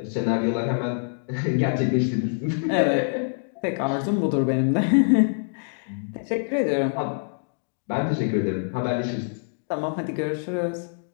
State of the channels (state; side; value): silent; right; digital silence